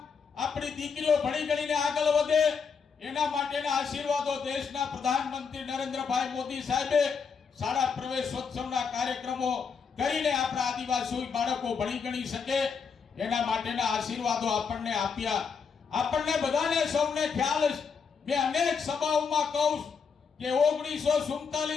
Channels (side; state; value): right; quieter; 5.9 dB